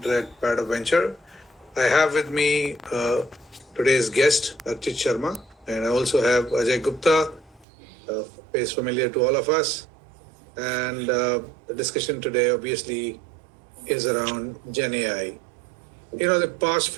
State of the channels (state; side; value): drops out; left; at 7.7 s